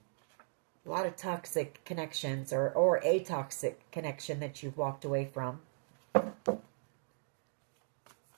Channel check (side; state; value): left; silent; digital silence